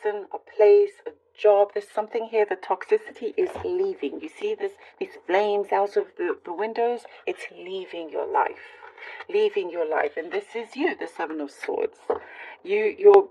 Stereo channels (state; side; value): identical; both; correlation 1.00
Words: a place, a job. There's something here. The toxicity is leaving. You see these flames out of the windows? It's leaving your life. Leaving your life. And this is you, the Seven of Swords.